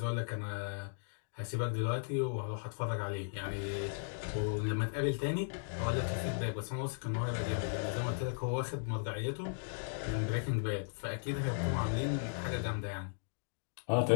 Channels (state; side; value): silent; right; digital silence